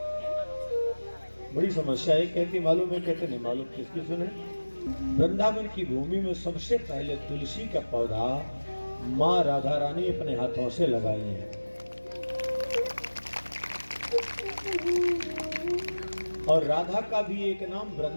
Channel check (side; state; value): both; inverted; correlation -1.00